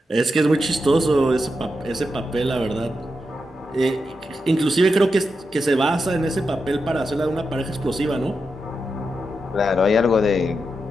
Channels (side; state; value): both; normal; correlation 0.87